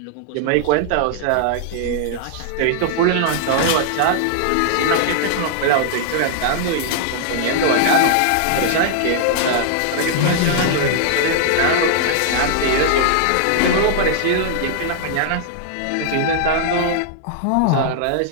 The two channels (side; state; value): both; different; correlation -0.01